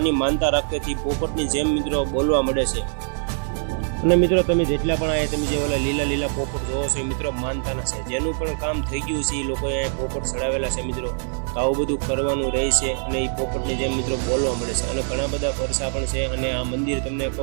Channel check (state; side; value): silent; left; 63 dB below the other